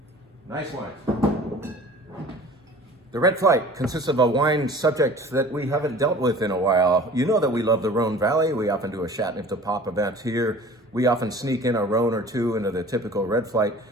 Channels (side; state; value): both; normal; correlation 0.44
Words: Nice wines. The Red Flight consists of a wine subject that we haven't dealt with in a while. You know that we love the Rhone Valley. We often do a Chateauneuf de Pop event here. We often sneak in a Rhone or two into the typical Red Flight.